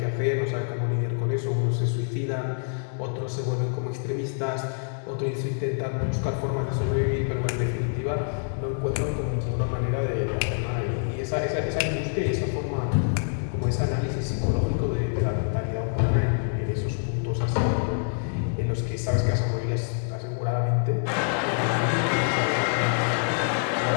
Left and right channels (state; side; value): silent; right; digital silence